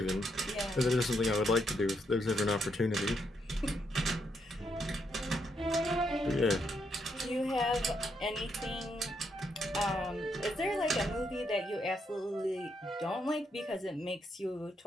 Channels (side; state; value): both; normal; correlation 0.77